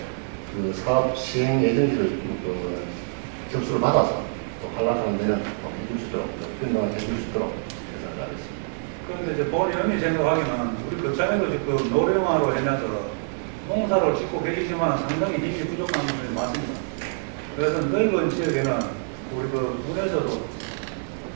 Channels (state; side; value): silent; left; digital silence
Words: 그 사업 시행 예정지를 그 접수를 받아서 또 한락하는 데는 또 해줄 수 있도록 변동을 해줄 수 있도록 계산을 하겠습니다. 그런데 이제 본의원이 생각하기는 우리 거창에도 지금 노령화로 해놔서 농사를 짓고 계시지만 상당히 힘이 부족한 분이 많습니다. 그래서 넓은 지역에는 우리 그 군에서도